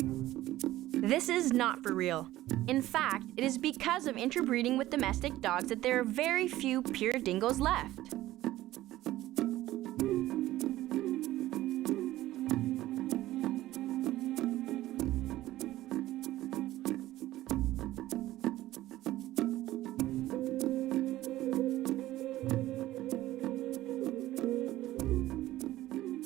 This is not for real. In fact, it is because of interbreeding with domestic dogs that there are very few pure dingoes left.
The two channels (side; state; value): left; quieter; 15.5 dB